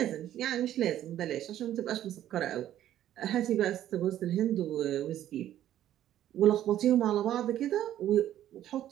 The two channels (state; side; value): quieter; left; 12.1 dB